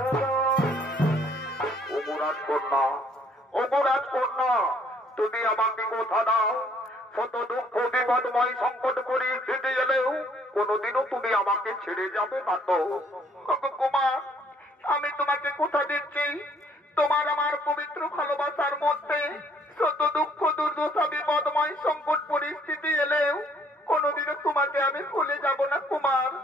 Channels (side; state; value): both; normal; correlation 0.63